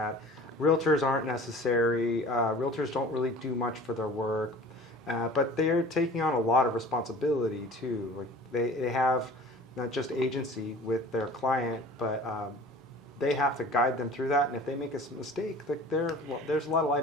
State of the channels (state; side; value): normal; both; correlation 0.43